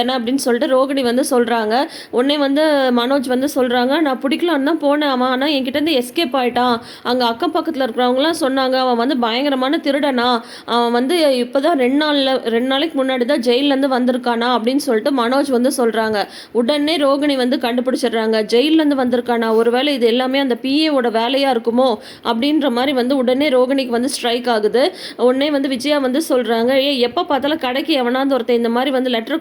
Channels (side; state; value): both; identical; correlation 1.00